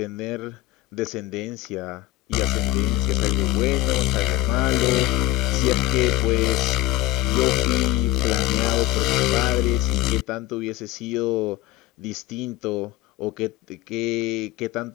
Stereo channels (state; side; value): quieter; right; 15.8 dB